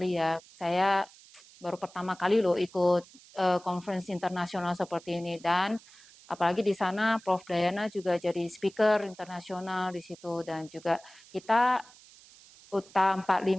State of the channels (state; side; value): noise; right; hiss, 23 dB below the sound